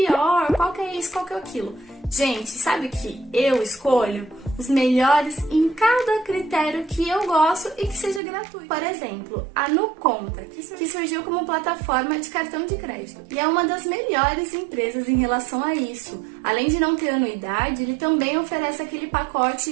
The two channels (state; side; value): drops out; left; at 8.2 s